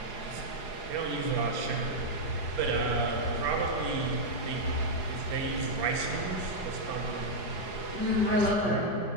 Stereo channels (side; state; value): right; late; 4.8 ms